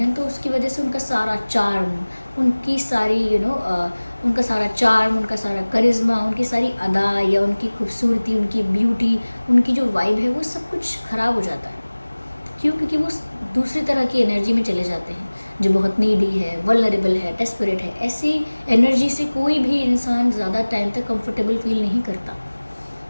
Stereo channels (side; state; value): both; inverted; correlation -1.00